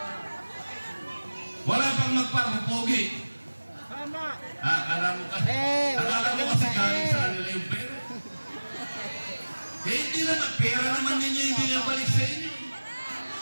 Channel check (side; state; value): both; inverted; correlation -1.00